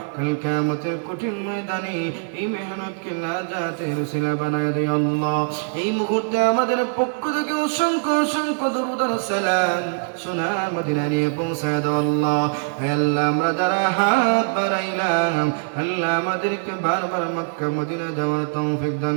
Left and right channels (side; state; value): left; silent; digital silence